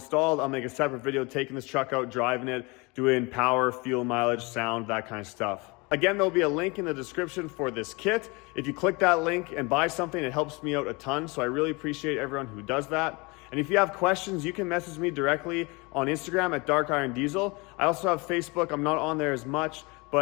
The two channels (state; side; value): quieter; right; 27.0 dB